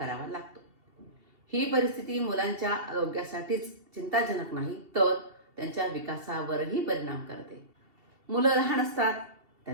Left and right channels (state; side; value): late; left; 2.7 ms